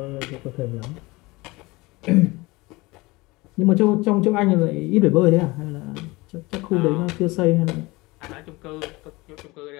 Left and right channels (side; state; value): right; quieter; 22.6 dB